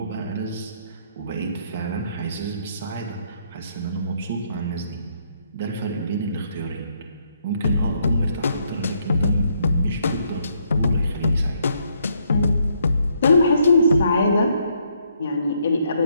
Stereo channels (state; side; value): inverted; both; correlation -0.72